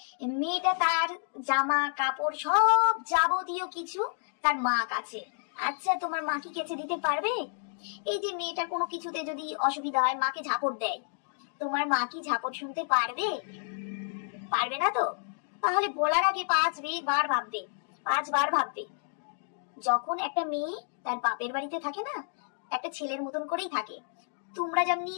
মেয়েটা তার জামা কাপড় সব যাবতীয় কিছু তার মা কাছে, আচ্ছা তোমার মা কি কেচে দিতে পারবে? এই যে মেয়েটা কোনো কিছুতে যদি অসুবিধা হয়, মাকে ঝাপট দেয়, তোমার মা কি ঝাপট শুনতে পারবে? পারবে না তো। তাহলে বলার আগে 5বার ভাববে, 5বার ভাববে। যখন একটা মেয়ে তার বাপের বাড়িতে থাকে না, একটা ছেলের মতন করেই থাকে। তোমরা যেমনি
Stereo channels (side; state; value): right; silent; digital silence